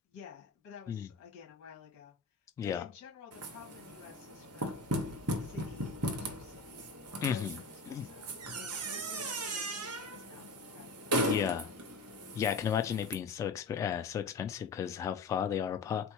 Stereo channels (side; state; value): right; quieter; 3.7 dB